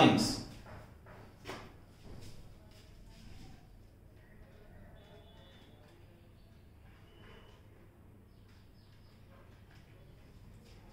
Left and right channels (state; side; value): identical; both; correlation 1.00